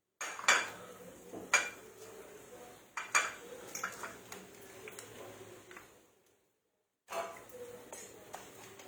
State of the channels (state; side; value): identical; both; correlation 1.00